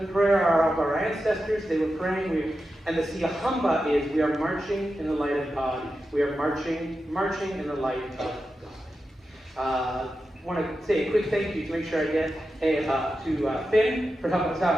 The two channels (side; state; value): both; normal; correlation 0.90